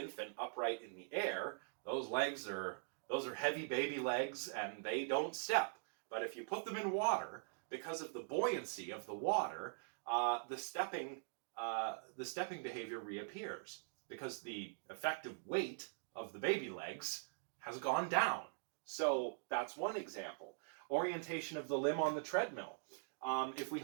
upright in the air, those are heavy baby legs and they don't step. But if you put them in water, because of the buoyancy of the water, the stepping behavior reappears because the effective weight of the baby legs has gone down. So that's one example. Orientation of the limb on the treadmill. If we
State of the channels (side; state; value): left; silent; digital silence